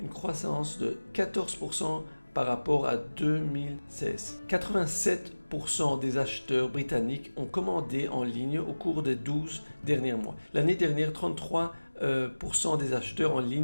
croissance de 14% par rapport à 2016. 87% des acheteurs britanniques ont commandé en ligne au cours des 12 derniers mois. L'année dernière, 33% des acheteurs en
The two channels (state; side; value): inverted; both; correlation -1.00